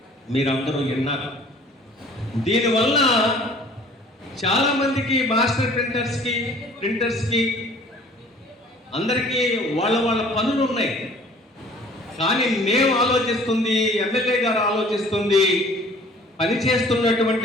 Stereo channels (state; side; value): normal; both; correlation 0.51